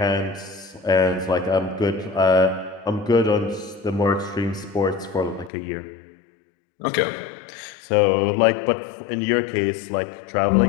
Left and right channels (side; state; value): right; drops out; at 5.5 s